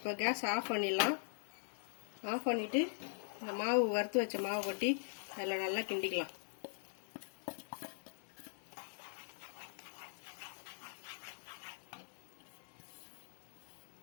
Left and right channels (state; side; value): silent; right; digital silence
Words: கேஸ் ஆஃப் பண்ணிடலாம். ஆஃப் பண்ணிட்டு இந்த மாவு வறுத்து வச்ச மாவு கொட்டி அதில் நல்லா கிண்டிக்கலாம்.